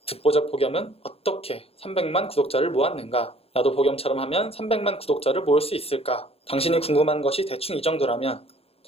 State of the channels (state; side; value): late; right; 0.28 ms